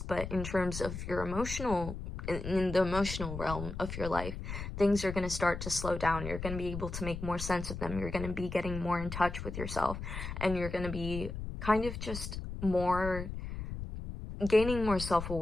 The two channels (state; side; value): noise; left; rumble, 7 dB below the sound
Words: but in terms of your emotional, in the emotional realm of your life, things are going to start to slow down. You're going to be able to make more sense of them. You're going to be getting more in touch with yourself, and you're going to be kind of just more, gaining more